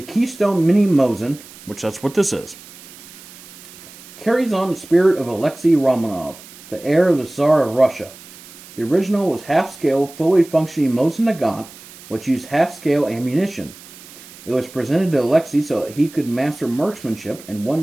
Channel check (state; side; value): noise; right; hiss, 19 dB below the sound